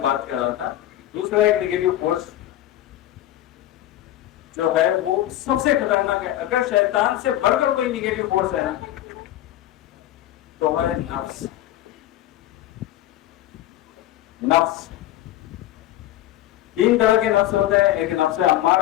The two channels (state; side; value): quieter; right; 13.8 dB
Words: بات کر رہا تھا۔ دوسرا ایک نیگیٹو فورس جو ہے وہ سب سے خطرناک ہے، اگر شیطان سے بڑھ کر کوئی نیگیٹو فورس ہے نا تو ہے نفس۔ نفس تین طرح کے نفس ہوتے ہیں، ایک نفس